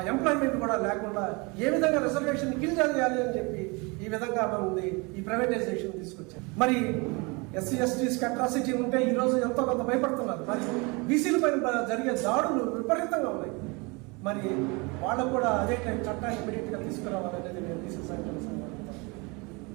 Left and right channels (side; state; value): left; quieter; 28.3 dB